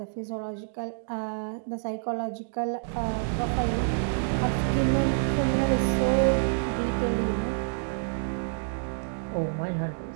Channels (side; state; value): left; silent; digital silence